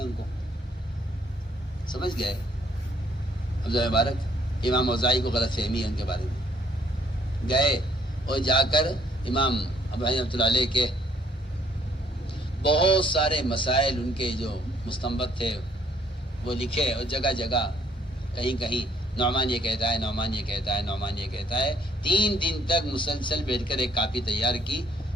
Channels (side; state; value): both; normal; correlation 0.65